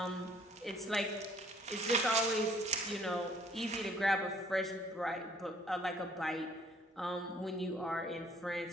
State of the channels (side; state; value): both; normal; correlation 0.60